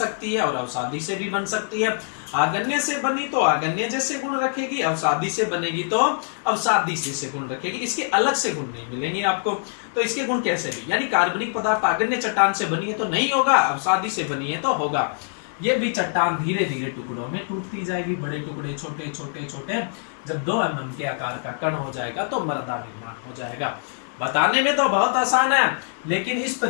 है और अवसादी से भी बन सकती है। आग्नेय से बनी तो आग्नेय जैसे गुण रखेगी, अवसादी से बनेगी तो अवसादी से गुण रखेगी। इसके अलग से गुण नहीं मिलेंगे आपको। तो इसके गुण कैसे भी, यानी कार्बनिक पदार्थ आग्नेय चट्टान से बनी है तो नहीं होगा, अवसादी से बनी है तो होगा। ये भी चट्टान धीरे धीरे टुकड़ों में टूटती जाएगी, बड़े टुकड़े, छोटे छोटे छोटे। जब 2 mm के आकार का कण हो जाएगा तो मृदा निर्माण हो जाएगा। बताने में तो बहुत आसान है, लेकिन इस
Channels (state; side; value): silent; right; 63 dB below the other